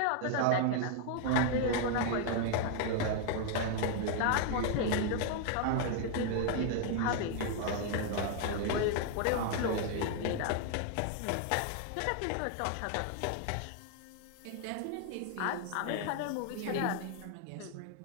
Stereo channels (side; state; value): both; different; correlation 0.00